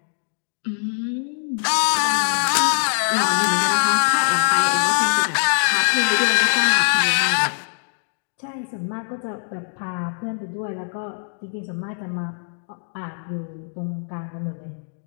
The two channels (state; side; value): silent; right; digital silence